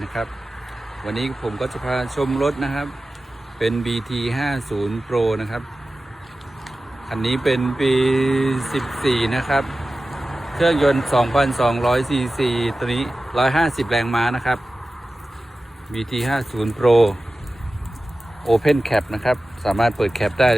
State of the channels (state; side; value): normal; both; correlation 0.95